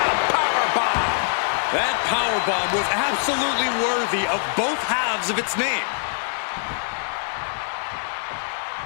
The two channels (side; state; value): right; silent; 61 dB below the other